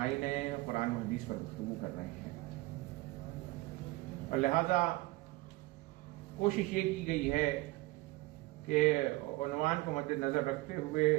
قرآن و حدیث پر گفتگو کر رہے ہیں، اور لہذا کوشش یہ کی گئی ہے کہ عنوان کو مد نظر رکھتے ہوئے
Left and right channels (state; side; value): quieter; left; 20.7 dB